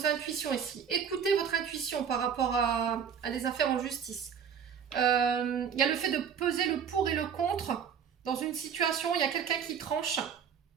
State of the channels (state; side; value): quieter; left; 7.3 dB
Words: intuitions ici. Écoutez votre intuition par rapport à des affaires en justice. Il y a le fait de peser le pour et le contre. Dans une situation, il y a quelqu'un qui tranche,